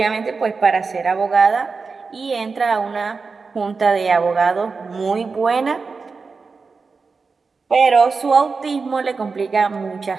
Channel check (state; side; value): quieter; left; 4.6 dB